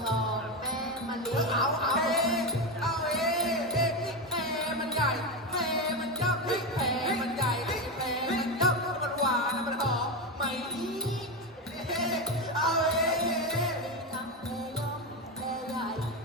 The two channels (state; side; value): normal; both; correlation 0.14